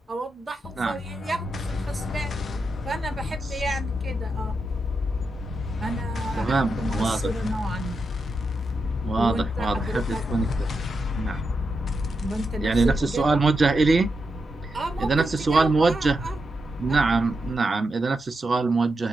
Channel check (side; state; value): both; normal; correlation 0.86